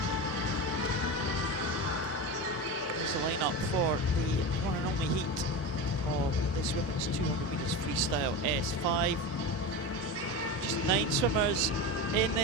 There's the lineup for the one and only heat of this women's 200 metres freestyle S5. Just 9 swimmers in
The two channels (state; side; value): normal; both; correlation 0.23